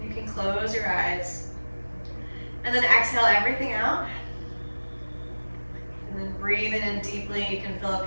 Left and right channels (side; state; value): both; inverted; correlation -1.00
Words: You can close your eyes. And then exhale everything out. And then breathing in deeply, you can fill up